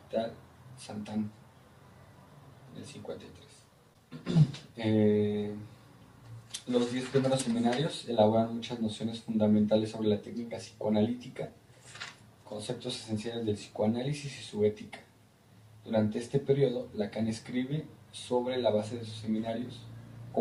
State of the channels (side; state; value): both; identical; correlation 1.00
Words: Sant'Anne, en el 53. Los 10 primeros seminarios elaboran muchas nociones fundamentales sobre la técnica psicoanalítica, conceptos esenciales del psicoanálisis y su ética. Durante este periodo, Lacan escribe sobre la base de sus seminarios,